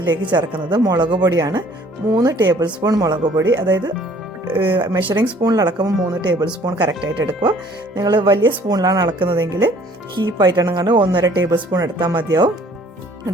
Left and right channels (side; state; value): both; normal; correlation 0.56